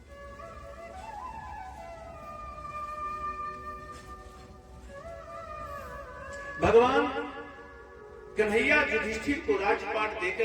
भगवान कन्हैया युधिष्ठिर को राजपाट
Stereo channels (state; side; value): identical; both; correlation 1.00